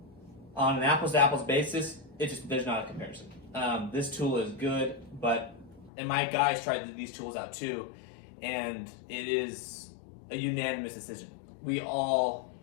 on an apples-to-apples basis, there's not a comparison. This tool is good, and my guys tried these tools out too, and it is a unanimous decision. We all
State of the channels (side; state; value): right; drops out; at 5.9 s